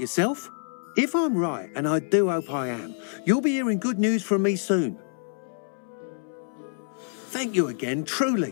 If I'm right, and I do hope I am, you'll be hearing good news from me soon. Thank you again,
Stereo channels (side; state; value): right; silent; 60 dB below the other